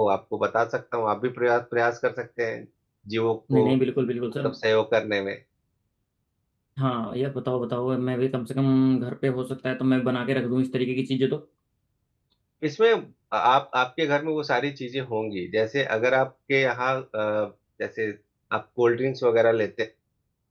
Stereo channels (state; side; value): identical; both; correlation 1.00